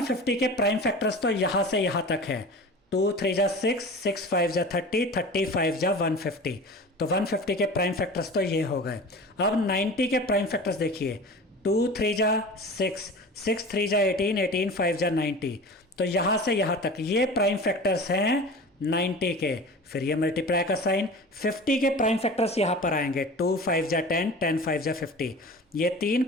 के प्राइम फैक्टर्स तो यहाँ से यहाँ तक है, 2 3 जा 6, 6 5 जा 30, 35 जा 150, तो 150 के प्राइम फैक्टर्स तो ये हो गए। अब 90 के प्राइम फैक्टर्स देखिए, 2 3 जा 6, 6 3 जा 18, 18 5 जा 90, तो यहाँ से यहाँ तक ये प्राइम फैक्टर्स हैं 90 के, फिर ये मल्टीप्लाई का साइन, 50 के प्राइम फैक्टर्स यहाँ पर आएंगे, 2 5 जा 10, 10 5 जा 50, ये तीन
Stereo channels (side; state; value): both; normal; correlation 0.36